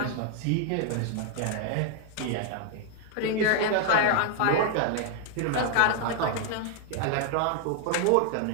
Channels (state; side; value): different; both; correlation 0.00